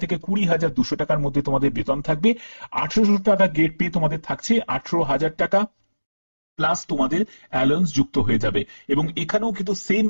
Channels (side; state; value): both; inverted; correlation -1.00